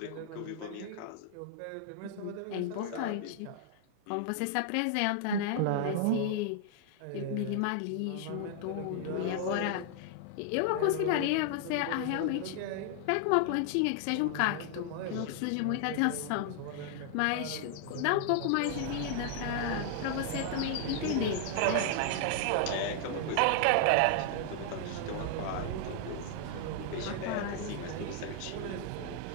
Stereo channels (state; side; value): different; both; correlation 0.00